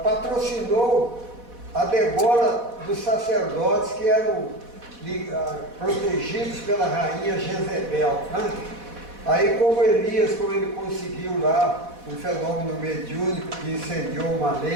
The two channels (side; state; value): left; late; 4.1 ms